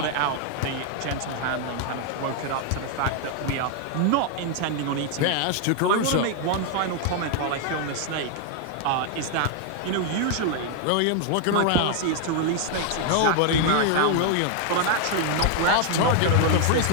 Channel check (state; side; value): different; both; correlation 0.00